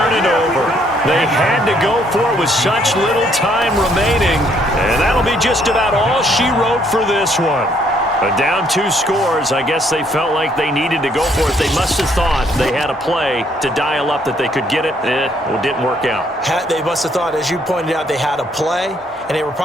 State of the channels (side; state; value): both; normal; correlation 0.68